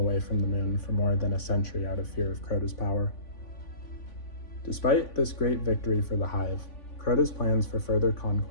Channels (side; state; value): right; late; 3.5 ms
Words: from the moon for more than a century out of fear of CROTA's power. Despite this great victory for the Hive, CROTA's plans for further